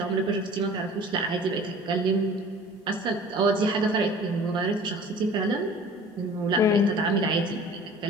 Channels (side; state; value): both; normal; correlation 0.45